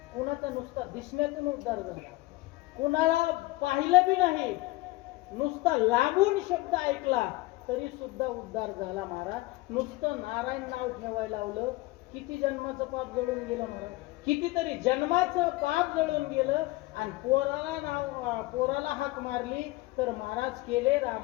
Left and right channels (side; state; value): right; quieter; 20.2 dB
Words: कुणाचा नुसता दिसण्यातून उद्धार झाला, कुणाला पाहिलं बी नाही, नुसता लांबून शब्द ऐकला तरी सुद्धा उद्धार झाला. महाराज नुसतं नारायण नाव ठेवायला लावलं, किती जन्माचं पाप जळून गेलं महाराज. कितीतरी जन्माचं पाप जळून गेलं. आणि पोराला हाक मारली तर महाराज केले